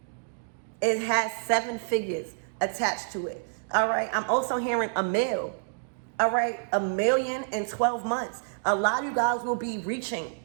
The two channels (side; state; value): left; silent; digital silence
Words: it has 7 figures attached to it. All right, I'm also hearing a mill. All right, $1 million in 12 months. A lot of you guys will be reaching